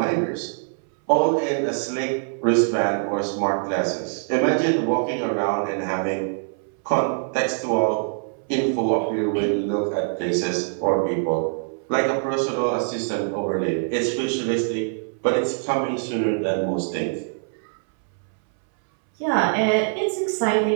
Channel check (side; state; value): left; silent; 63 dB below the other